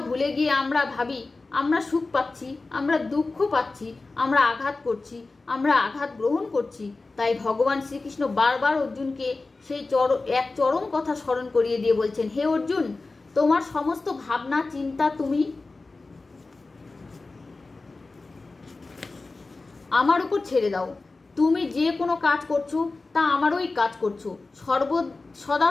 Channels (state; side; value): quieter; right; 3.6 dB